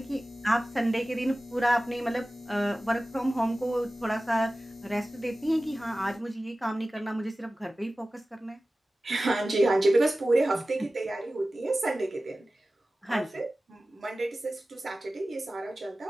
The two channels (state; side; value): normal; both; correlation 0.96